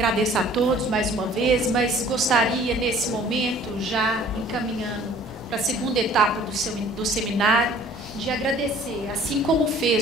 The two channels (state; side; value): normal; both; correlation 0.52